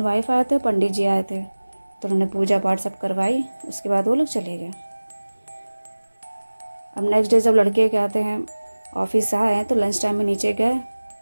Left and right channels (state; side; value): inverted; both; correlation -1.00